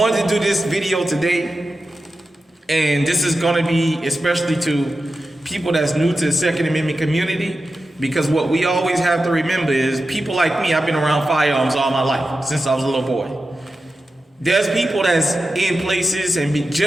to do this video today, and this is gonna be especially to people that's new to the Second Amendment community, because what we always have to remember is people like me, I've been around firearms all my life, since I was a little boy. There's people that's in places and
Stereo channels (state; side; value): normal; both; correlation 0.92